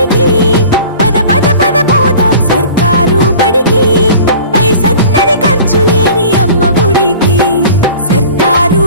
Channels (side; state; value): both; inverted; correlation -0.44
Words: పద పద పద పోదాం సర్కారు బడికి. పైసన్నది ఖర్చు లేని అమ్మ ఒడికి. సర్కారు